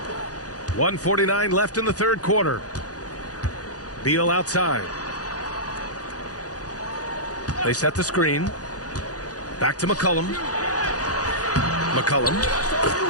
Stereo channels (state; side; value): late; right; 0.67 ms